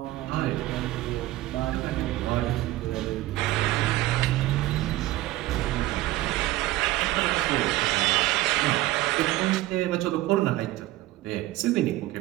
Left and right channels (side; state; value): left; quieter; 16.9 dB